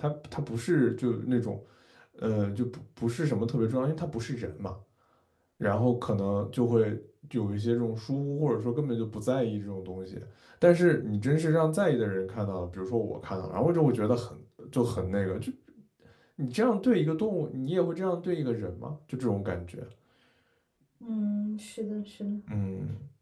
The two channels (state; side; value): identical; both; correlation 1.00